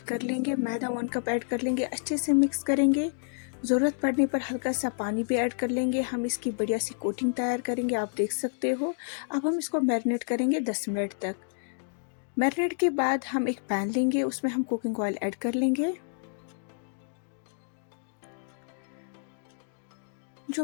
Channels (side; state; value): right; silent; digital silence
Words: कर लेंगे, मैदा 1 कप ऐड कर लेंगे, अच्छे से मिक्स करेंगे। ज़रूरत पड़ने पर हल्का सा पानी भी ऐड कर लेंगे। हम इसकी बढ़िया सी कोटिंग तैयार करेंगे, आप देख सकते हो। अब हम इसको मैरिनेट करेंगे 10 मिनट तक। मैरिनेट के बाद हम एक पैन लेंगे, उसमें हम कुकिंग ऑयल ऐड कर लेंगे।